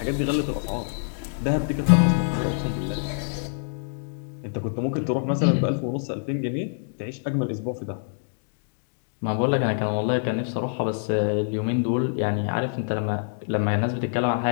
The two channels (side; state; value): right; silent; digital silence